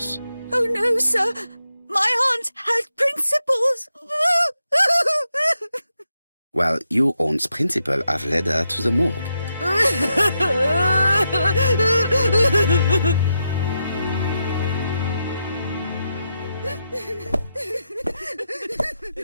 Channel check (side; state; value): both; inverted; correlation -0.84